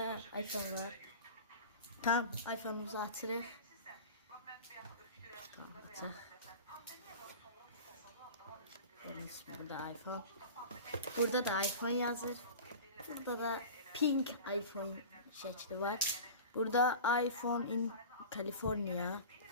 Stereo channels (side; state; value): both; inverted; correlation -0.36